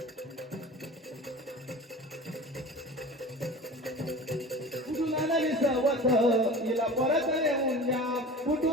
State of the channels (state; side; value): normal; both; correlation 0.36